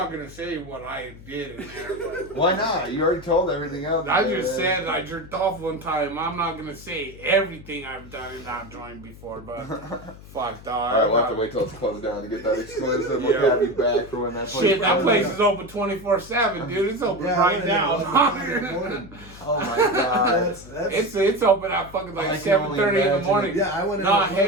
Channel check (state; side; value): noise; left; hum, 18 dB below the sound